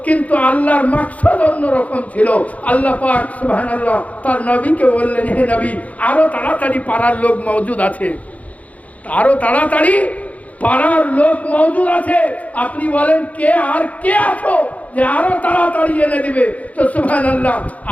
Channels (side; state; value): right; late; 0.069 ms